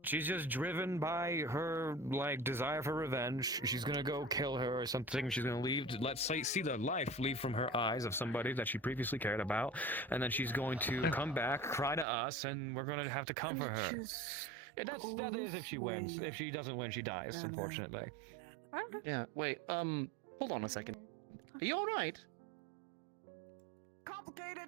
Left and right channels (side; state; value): left; drops out; at 12.1 s